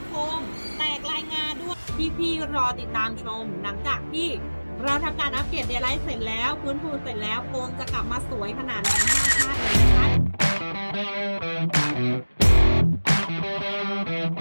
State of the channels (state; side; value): inverted; both; correlation -1.00